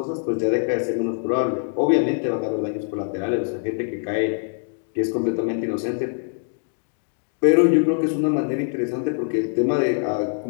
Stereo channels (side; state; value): right; silent; digital silence